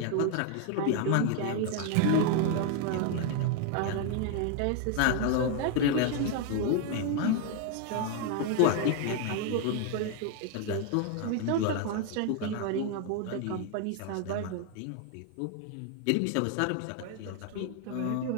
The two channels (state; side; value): different; both; correlation 0.00